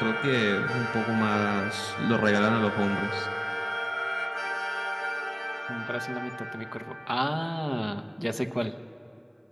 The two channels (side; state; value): both; identical; correlation 1.00